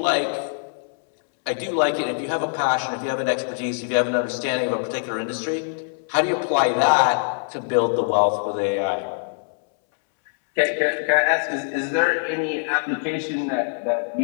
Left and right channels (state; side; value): silent; right; 63 dB below the other